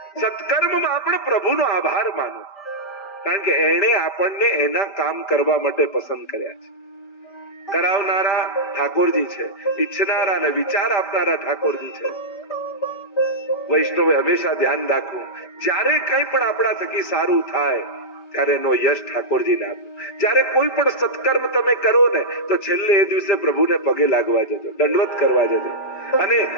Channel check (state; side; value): late; right; 5.1 ms